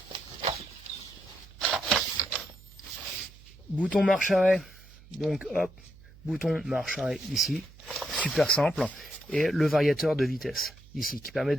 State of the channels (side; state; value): right; noise; hum, 22 dB below the sound